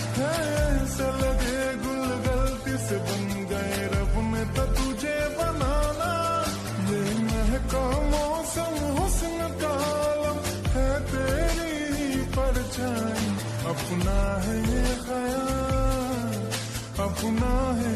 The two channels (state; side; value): identical; both; correlation 1.00